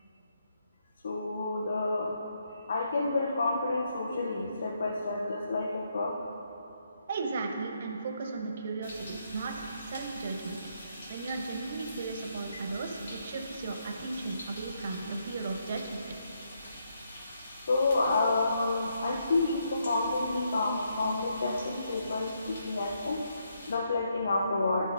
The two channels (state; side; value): inverted; both; correlation -0.77